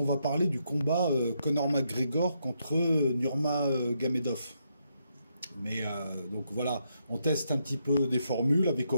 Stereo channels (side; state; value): both; inverted; correlation -0.79